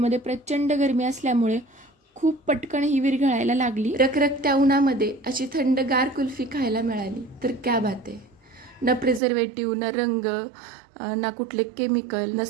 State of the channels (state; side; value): drops out; left; at 9.2 s